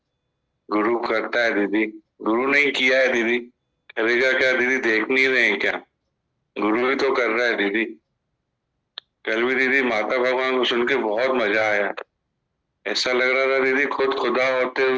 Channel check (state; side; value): identical; both; correlation 1.00